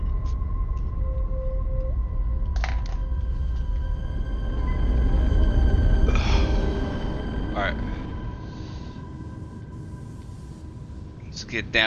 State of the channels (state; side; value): identical; both; correlation 1.00